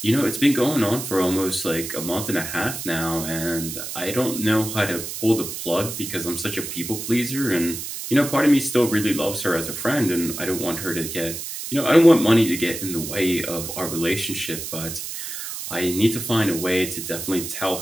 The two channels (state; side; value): noise; right; hiss, 7 dB below the sound